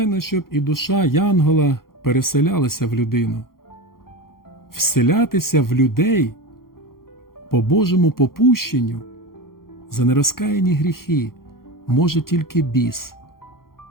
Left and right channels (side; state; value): right; late; 0.92 ms